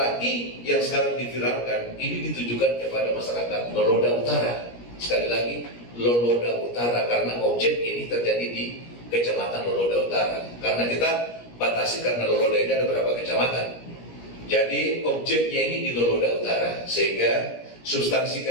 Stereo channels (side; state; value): right; late; 17 ms